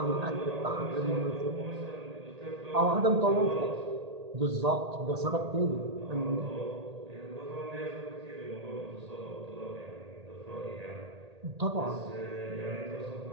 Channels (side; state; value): left; late; 1.8 ms